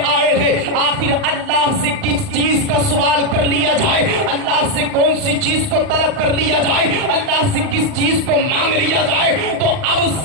آئے ہیں، آخر اللہ سے کس چیز کا سوال کر لیا جائے، اللہ سے کون سی چیز کو طلب کر لیا جائے، اللہ سے کس چیز کو مانگ لیا جائے؟ تو اب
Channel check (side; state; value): left; late; 39 ms